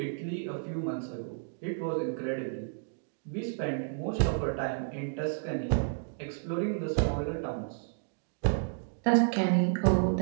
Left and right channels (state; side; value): silent; left; digital silence